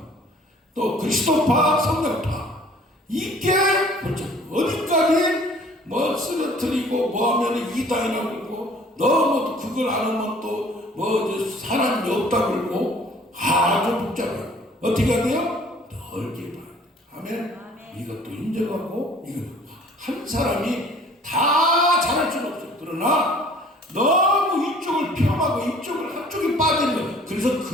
또 그리스도파, 성령파. 이게 그렇죠. 어디까지 뭐 쓰러뜨리고 뭐 하면 이단이라고 그러고 너무 그걸 안 하면 또 뭐 사람이 없다고 그러고 아주 복잡해요. 어떻게 해야 돼요? 넓게 봐요. 아멘. 이것도 인정하고 이거 한 사람이 다 잘할 수는 없어요. 그러나 너무 이쪽을 폄하고 이쪽을 한쪽에 빠지는 거예요. 그래서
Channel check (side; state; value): both; normal; correlation 0.53